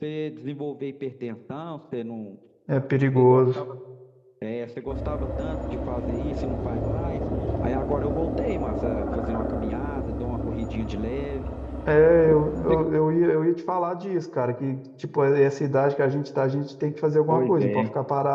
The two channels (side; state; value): both; identical; correlation 1.00